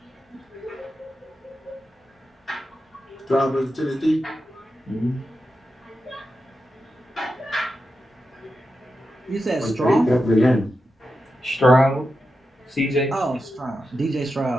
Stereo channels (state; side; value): normal; both; correlation 0.89